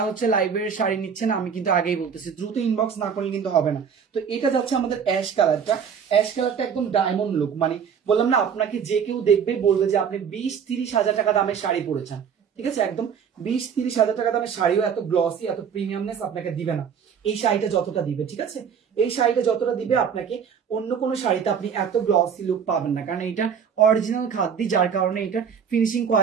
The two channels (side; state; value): left; quieter; 7.2 dB